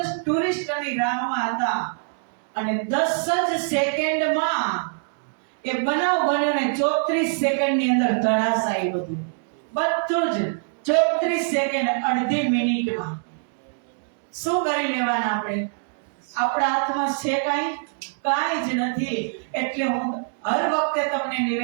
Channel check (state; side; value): silent; left; digital silence